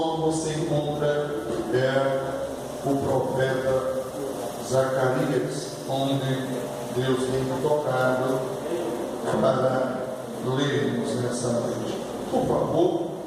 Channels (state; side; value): identical; both; correlation 1.00